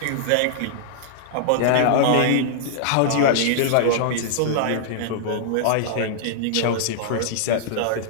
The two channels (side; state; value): both; different; correlation -0.01